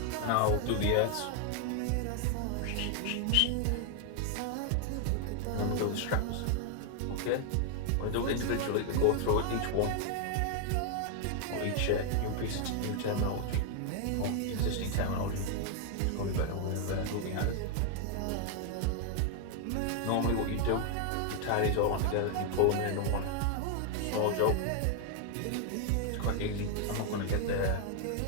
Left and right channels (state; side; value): different; both; correlation 0.00